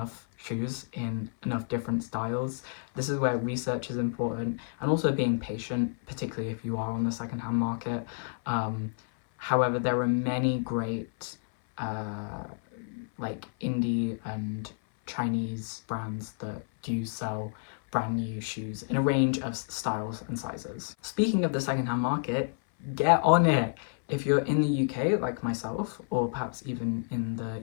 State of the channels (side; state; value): right; silent; 57 dB below the other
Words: shoes in enough different styles. This is where research is important, and also being patient, particularly if you are on the secondhand market. However, there are many great like indie and Chinese brands that do sell brand new shoes in a range of styles and sizes. Speaking of the secondhand market, get on it. If you're in the UK like myself, or perhaps even in